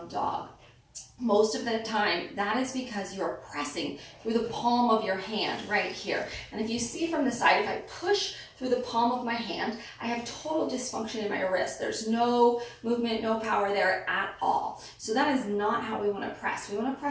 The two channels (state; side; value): identical; both; correlation 1.00